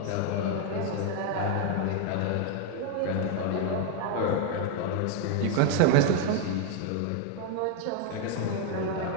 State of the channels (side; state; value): both; different; correlation 0.01